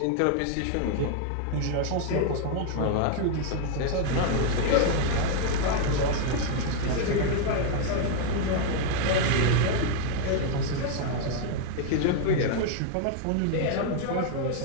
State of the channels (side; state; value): both; different; correlation 0.00